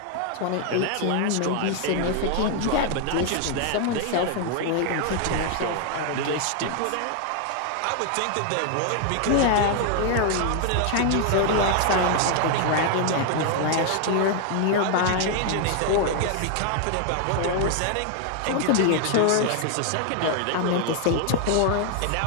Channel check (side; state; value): both; different; correlation 0.00